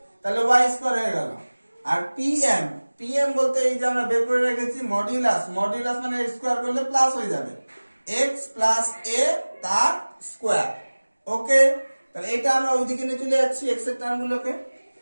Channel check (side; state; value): both; inverted; correlation -1.00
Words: তাহলে y স্কয়ার হয়ে গেল। আর pm বলতে এই যে আমরা বের করে রেখেছি মডুলাস, মডুলাস মানে স্কয়ার করলে প্লাস হয়ে যাবে, x + a তার স্কয়ার। ওকে, তাহলে এটা আমরা ওইদিকে নিয়ে চলে যাচ্ছি x এর টার্মগুলোকে।